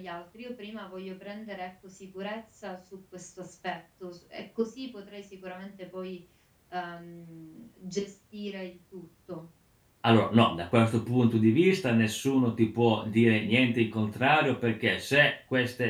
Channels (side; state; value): both; identical; correlation 1.00